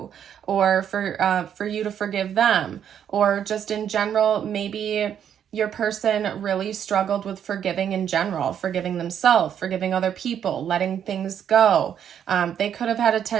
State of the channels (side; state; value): left; quieter; 9.0 dB